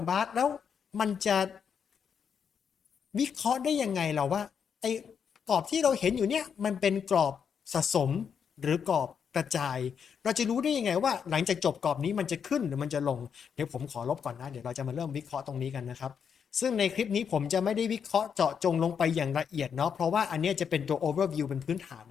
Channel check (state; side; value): quieter; right; 7.1 dB